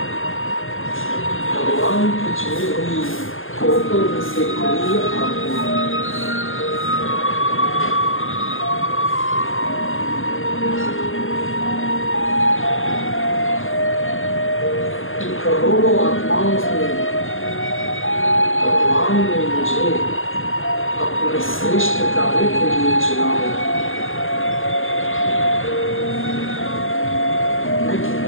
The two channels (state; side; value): late; right; 0.59 ms